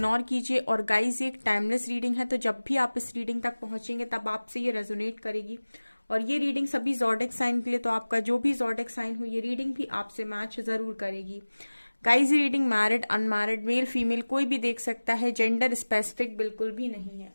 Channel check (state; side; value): inverted; both; correlation -1.00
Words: कीजिए। और गाइस, ये एक टाइमलेस रीडिंग है, तो जब भी आप इस रीडिंग तक पहुंचेंगे तब आपसे ये रेजोनेट करेगी। और ये रीडिंग सभी ज़ोडिक साइन के लिए, तो आपका जो भी ज़ोडिक साइन हो ये रीडिंग भी आपसे मैच जरूर करेगी। गाइस, ये reading married unmarried male female कोई भी देख सकता है, जेंडर स्पेसिफिक बिल्कुल भी नहीं है।